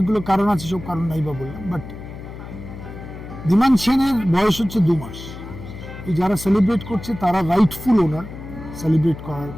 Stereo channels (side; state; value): left; noise; hum, 12 dB below the sound